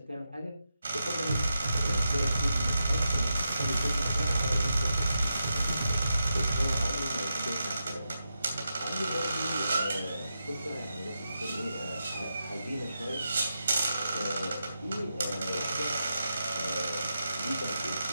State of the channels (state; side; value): inverted; both; correlation -0.87